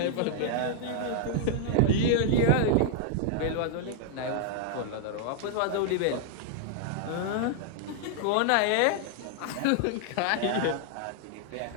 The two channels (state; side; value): different; both; correlation 0.00